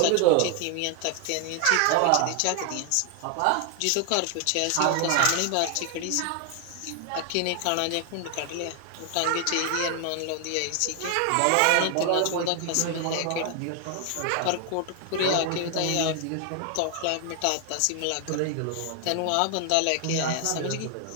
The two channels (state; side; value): different; both; correlation 0.00